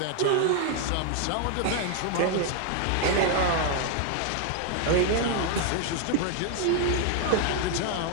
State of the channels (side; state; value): both; different; correlation 0.00